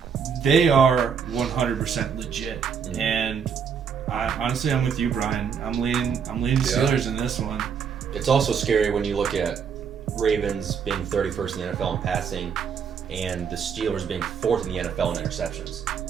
They are 100% legit, and honestly, I'm with you, Brian. I'm leaning Steelers in this one. It's also scary when you look at Ravens being 31st in the NFL in passing, and the Steelers being 4th in the NFL in interceptions.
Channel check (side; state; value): left; quieter; 6.8 dB